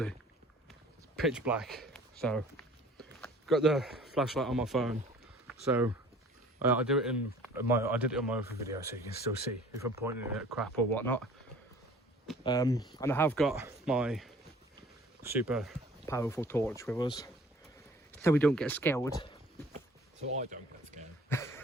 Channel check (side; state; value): both; normal; correlation 0.50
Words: it's pitch black, so got the flashlight on my phone, so I did it on my other video so you can still see if I'm pointing at crap or whatnot. And I have got my super powerful torch with us so we don't get scared. So I don't get scared.